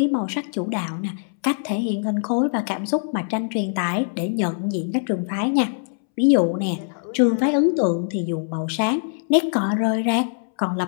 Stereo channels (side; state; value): right; silent; 64 dB below the other